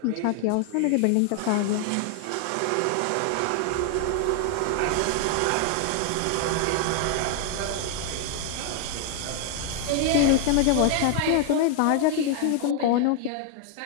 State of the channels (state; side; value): different; both; correlation 0.00